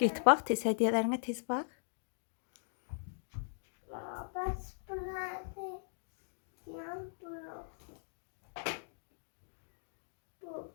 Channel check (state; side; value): silent; right; digital silence